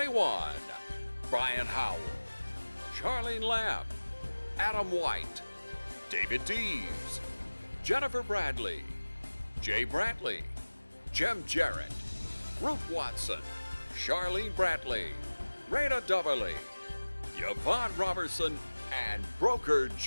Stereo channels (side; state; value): both; inverted; correlation -1.00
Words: Brian Howell, Charlene Lamb, Adam White, David Deves, Jennifer Bradley, Jay Brantley, Jim Jarrett, Ruth Watson, Charlene Brantley, Raina Dubberly, Yvonne Robertson, and broker